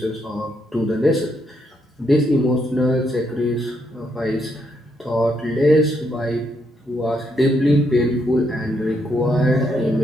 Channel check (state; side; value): normal; both; correlation 0.77